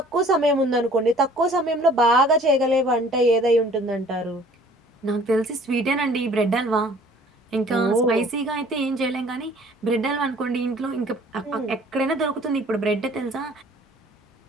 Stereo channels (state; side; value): normal; both; correlation 0.53